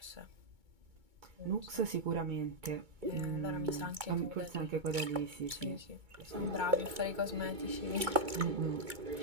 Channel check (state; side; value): late; left; 2.2 ms